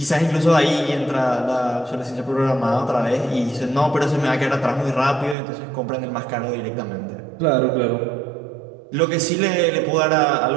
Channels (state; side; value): drops out; left; at 5.4 s